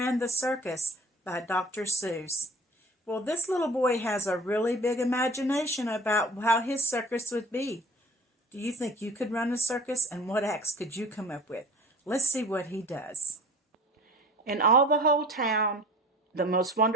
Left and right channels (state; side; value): normal; both; correlation 0.43